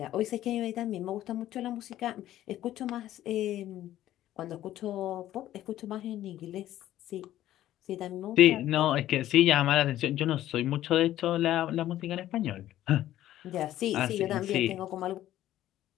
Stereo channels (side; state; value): right; quieter; 13.3 dB